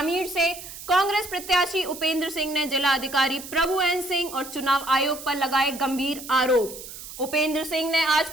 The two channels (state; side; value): noise; right; hiss, 13 dB below the sound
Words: से कांग्रेस प्रत्याशी उपेंद्र सिंह ने जिला अधिकारी प्रभु एन सिंह और चुनाव आयोग पर लगाए गंभीर आरोप। उपेंद्र सिंह ने आज